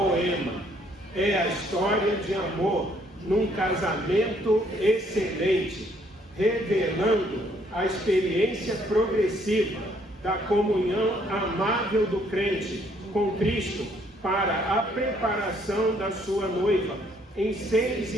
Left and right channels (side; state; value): both; normal; correlation 0.66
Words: é a história de amor num casamento excelente, revelando a experiência progressiva da comunhão amável do crente com Cristo para a preparação da sua noiva em 6